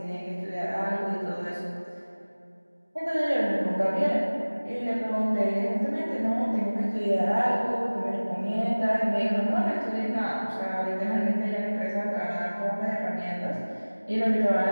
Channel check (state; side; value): inverted; both; correlation -1.00